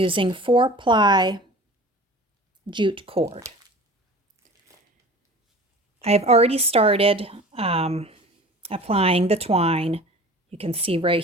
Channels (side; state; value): both; normal; correlation 0.41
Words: 4-ply jute cord. I've already started applying the twine. You can see right